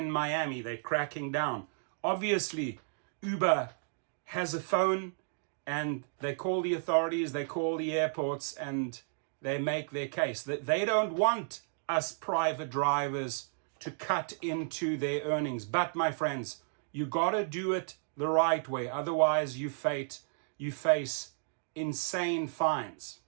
Miami, they're cracking down. Obviously, Uber has a phone and they call the authorities, they call the airports, and they make their case. That they don't want us private drivers to cut into their earnings. But my friends, you gotta do it the right way. Otherwise, you face insane fines.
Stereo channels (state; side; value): silent; left; digital silence